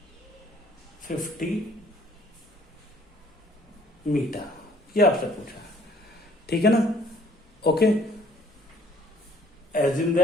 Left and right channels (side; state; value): both; normal; correlation 0.59